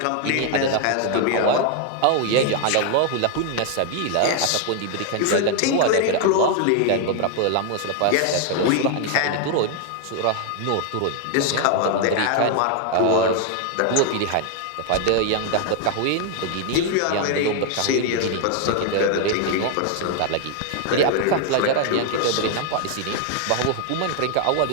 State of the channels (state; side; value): different; both; correlation 0.00